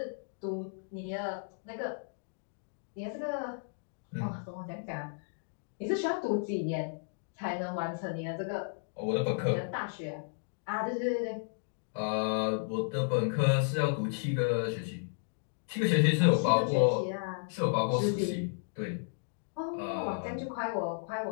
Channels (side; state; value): right; silent; digital silence